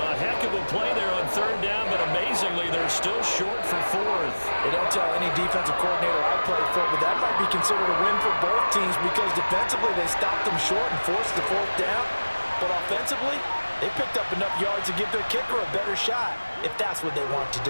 heck of a play there on 3rd down, but amazingly, they're still short for 4th. They don't tell any defensive coordinator I played for, but that might be considered a win for both teams because defensively they stopped them short and forced the 4th down. But offensively, they picked up enough yards to give their kicker a better shot if that's what they want to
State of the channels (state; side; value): inverted; both; correlation -1.00